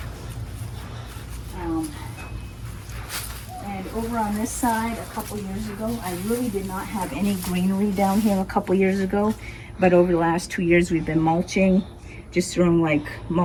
And over on this side, a couple years ago, I really did not have any greenery down here a couple years ago, but over the last 2 years we've been mulching, just throwing like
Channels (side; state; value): both; identical; correlation 1.00